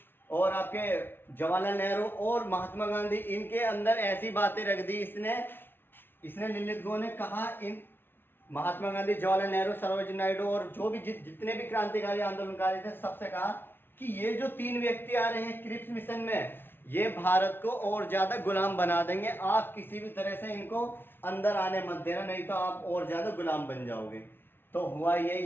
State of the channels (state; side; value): late; right; 0.10 ms